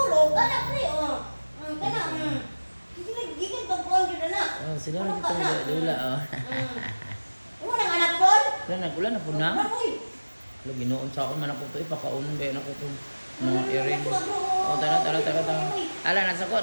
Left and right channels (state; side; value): inverted; both; correlation -1.00